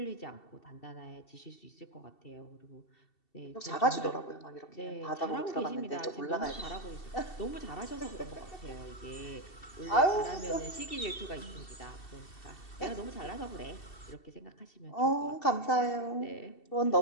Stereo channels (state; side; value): late; right; 2.7 ms